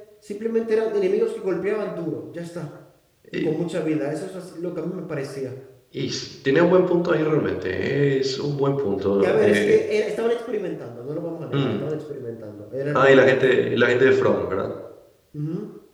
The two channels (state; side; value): identical; both; correlation 1.00